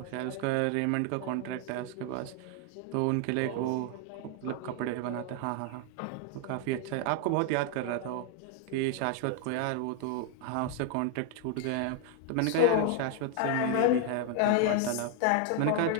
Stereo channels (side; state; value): both; different; correlation 0.00